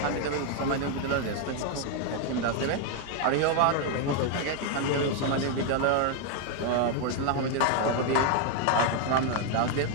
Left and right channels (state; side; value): different; both; correlation 0.01